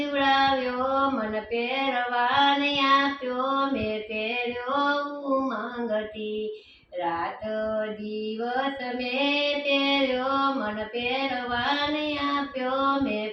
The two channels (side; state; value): both; identical; correlation 1.00